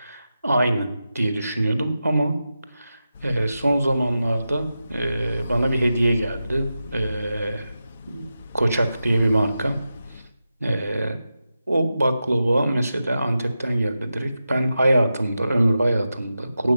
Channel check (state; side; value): inverted; both; correlation -0.91